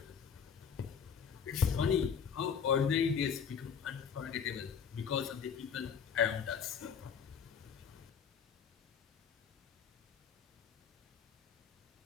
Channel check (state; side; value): quieter; right; 7.0 dB